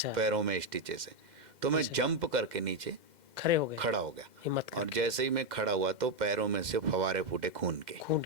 पैरों में स्टिचेस से। तो मैं अच्छा। जंप करके नीचे खड़े हो गए। खड़ा हो गया, हिम्मत और करके। जैसे ही मैं खड़ा हुआ तो पैरों में से फवारे फूटे खून के। खून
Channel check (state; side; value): late; left; 2.1 ms